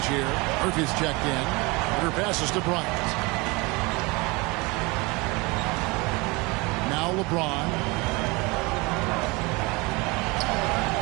here. Murphy's checked in. Her passes to Bryant. Now LeBron.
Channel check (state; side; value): quieter; left; 25.7 dB